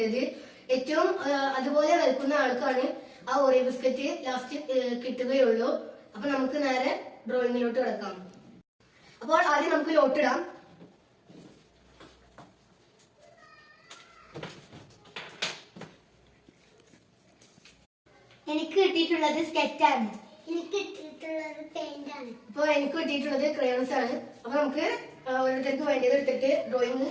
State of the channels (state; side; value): identical; both; correlation 1.00